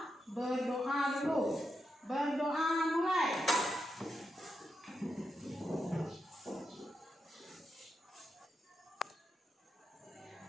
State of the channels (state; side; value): normal; both; correlation 0.85